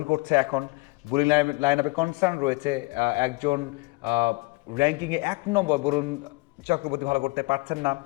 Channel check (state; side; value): quieter; right; 26.2 dB